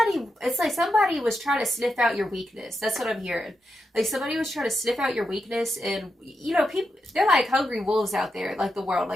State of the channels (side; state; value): both; normal; correlation 0.86